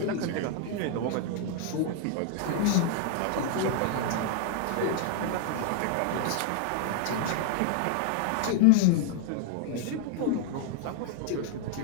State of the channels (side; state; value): both; different; correlation 0.00